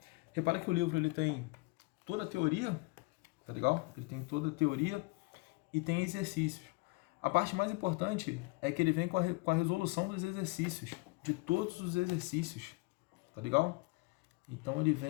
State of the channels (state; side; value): quieter; right; 25.8 dB